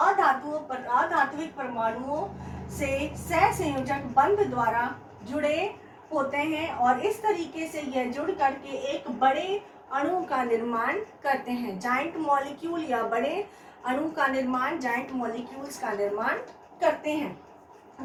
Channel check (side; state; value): both; identical; correlation 1.00